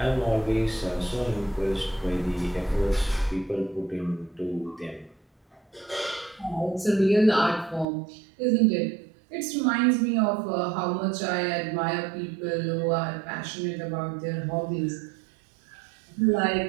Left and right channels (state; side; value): drops out; left; at 7.9 s